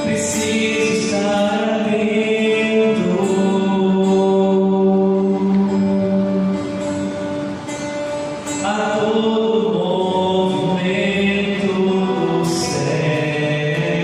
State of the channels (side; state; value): both; identical; correlation 1.00